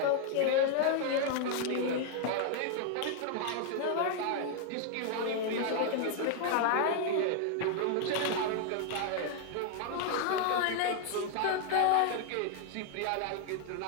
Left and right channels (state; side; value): different; both; correlation 0.00